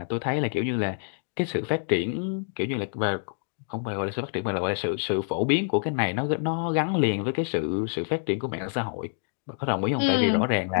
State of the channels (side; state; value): right; silent; digital silence